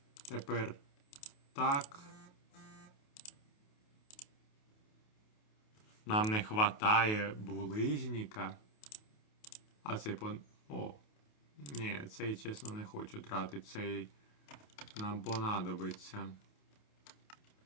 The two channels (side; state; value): right; late; 28 ms